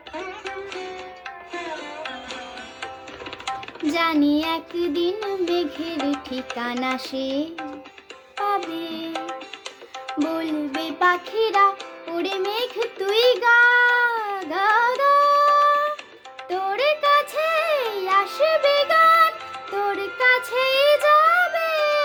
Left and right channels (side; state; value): both; identical; correlation 1.00